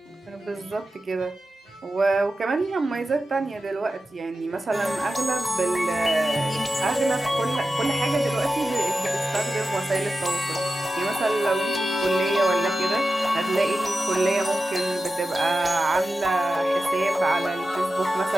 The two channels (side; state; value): both; normal; correlation 0.92